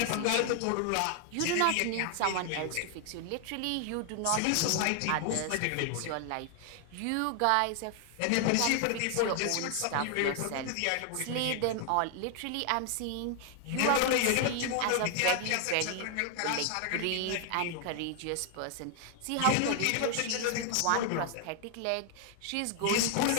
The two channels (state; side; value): different; both; correlation 0.00